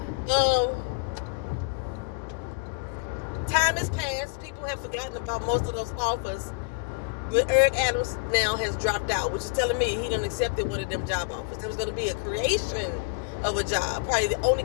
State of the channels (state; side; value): quieter; right; 32.5 dB